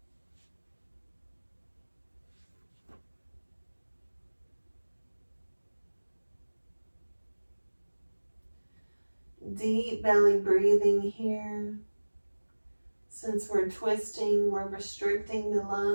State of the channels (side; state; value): both; inverted; correlation -1.00